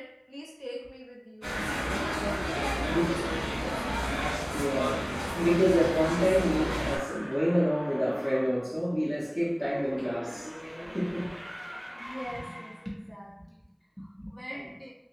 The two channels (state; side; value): identical; both; correlation 1.00